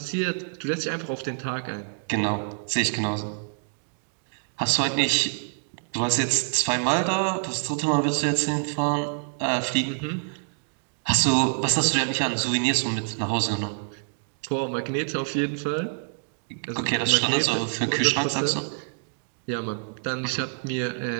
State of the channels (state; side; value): silent; left; digital silence